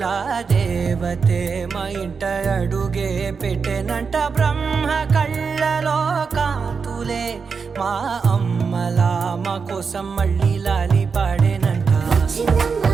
దేవతే మా ఇంట అడుగే పెట్టెనంట బ్రహ్మ కళ్ళలో కాంతులే మా అమ్మలా మా కోసం మళ్ళీ లాలి పాడేనంట వచ్చిందమ్మ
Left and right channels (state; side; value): quieter; left; 5.4 dB